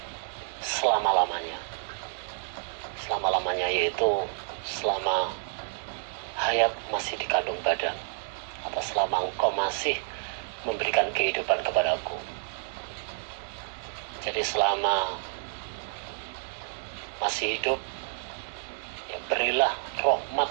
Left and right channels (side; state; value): left; silent; 58 dB below the other